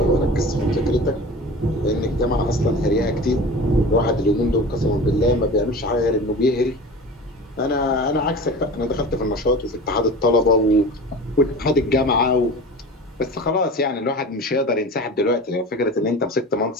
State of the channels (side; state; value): both; normal; correlation 0.35